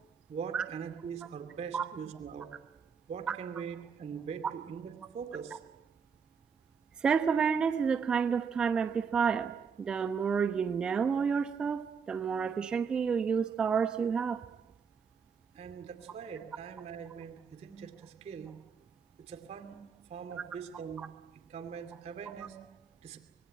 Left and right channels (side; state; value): left; quieter; 6.2 dB